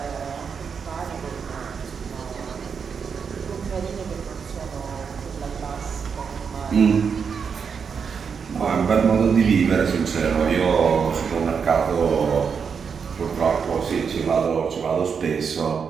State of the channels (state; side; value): quieter; left; 6.3 dB